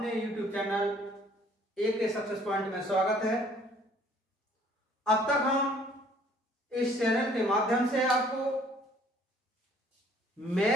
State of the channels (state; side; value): normal; both; correlation 0.58